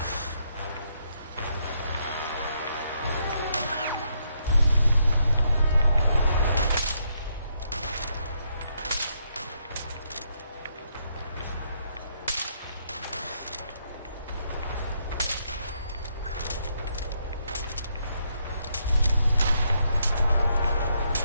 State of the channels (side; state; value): both; inverted; correlation -0.75